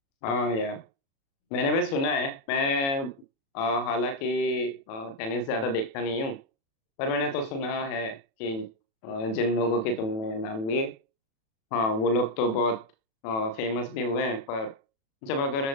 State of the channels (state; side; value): late; right; 36 ms